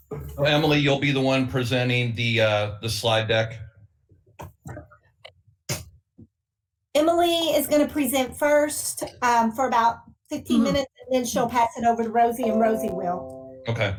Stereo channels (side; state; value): both; identical; correlation 1.00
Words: Emily, you'll be the one presenting the slide deck. Emily is going to present first for about 15 minutes, and then she'll pass it over to Rosie, and Rosie will. Okay.